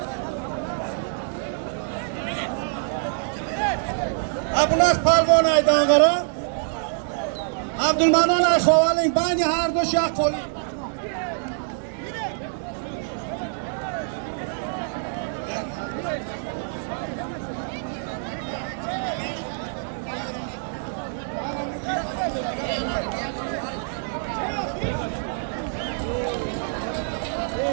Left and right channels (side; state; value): left; silent; 62 dB below the other